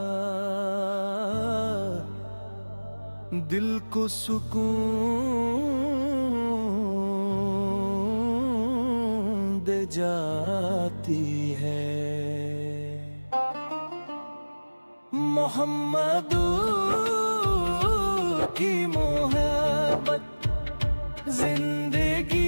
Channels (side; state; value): both; inverted; correlation -1.00